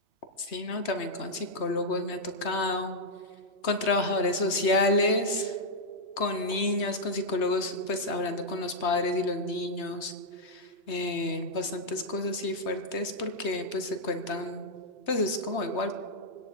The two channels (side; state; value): right; late; 3.2 ms